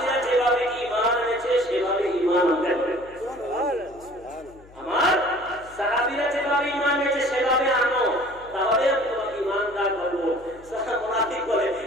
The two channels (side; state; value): left; noise; hum, 24 dB below the sound